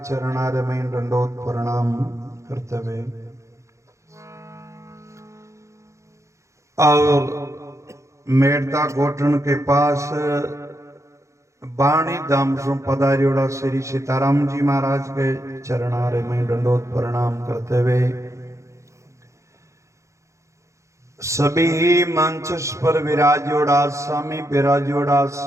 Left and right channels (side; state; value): left; late; 0.14 ms